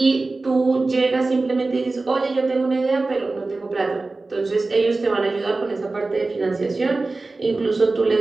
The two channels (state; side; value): quieter; left; 3.4 dB